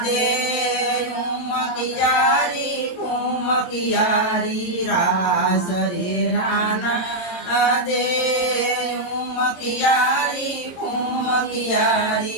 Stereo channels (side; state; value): right; late; 22 ms